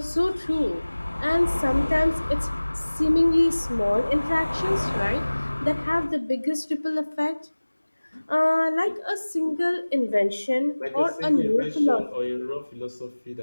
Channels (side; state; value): both; inverted; correlation -1.00